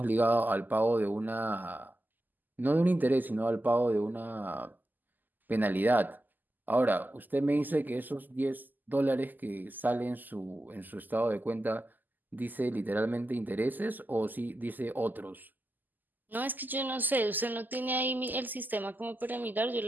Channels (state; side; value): late; left; 0.086 ms